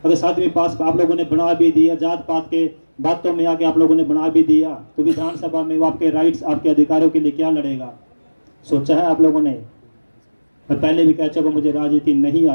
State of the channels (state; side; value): inverted; both; correlation -1.00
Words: अगर 7वीं पास आप लोगों ने बना भी दिया, जात पात के बातों में आके आप लोगों ने बना भी दिया, तो विधानसभा में वो आपके राइट्स, आपके अधिकारों के लिए क्या लड़ेगा? सोचा है आप लोगों ने? मैं पहले भी कह चुका, मुझे राजनीति नहीं